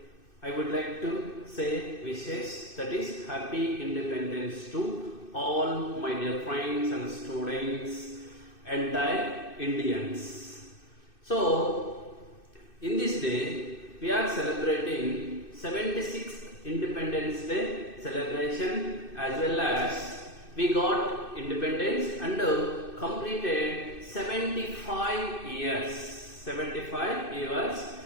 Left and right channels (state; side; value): late; right; 2.6 ms